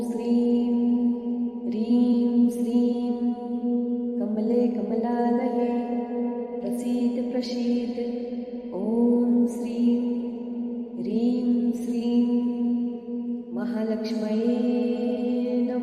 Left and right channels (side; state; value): both; identical; correlation 1.00